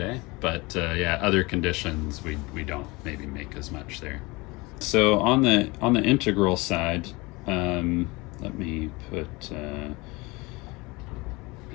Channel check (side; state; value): right; quieter; 24.3 dB